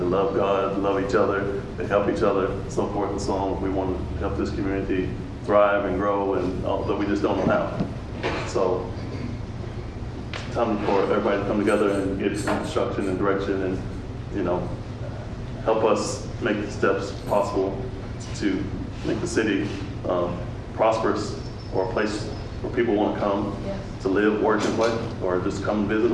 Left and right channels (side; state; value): both; identical; correlation 1.00